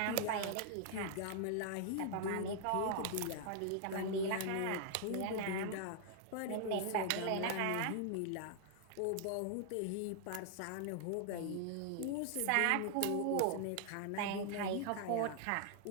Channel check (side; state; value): both; different; correlation 0.00